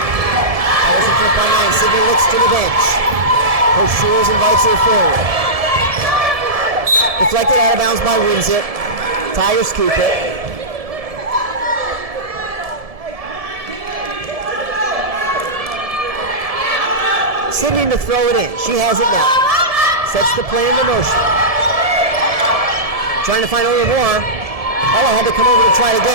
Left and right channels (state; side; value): late; left; 1.7 ms